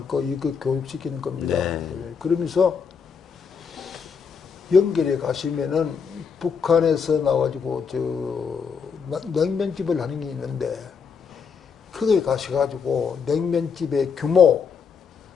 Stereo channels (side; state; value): right; quieter; 6.1 dB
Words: 거 이거 교육시키는 겁니다. 네. 예, 그러면서 연결해 가시면은 북한에서 나와가지고 냉면집을 하는 게 있는데 거기에 가셔가지고 냉면집의 규모,